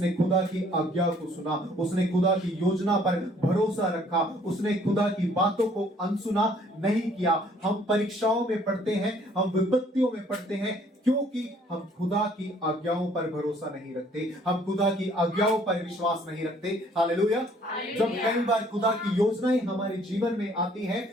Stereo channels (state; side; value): normal; both; correlation 0.60